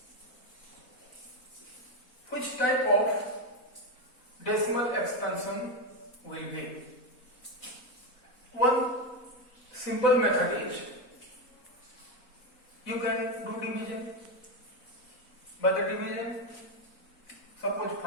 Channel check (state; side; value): late; right; 4.1 ms